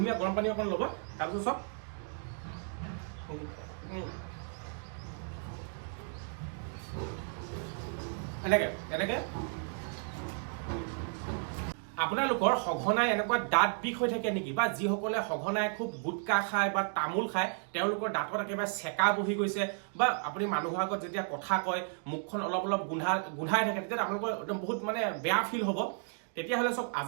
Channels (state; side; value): silent; left; 55 dB below the other